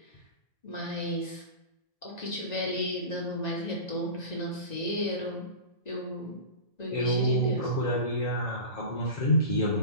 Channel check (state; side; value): late; right; 1.9 ms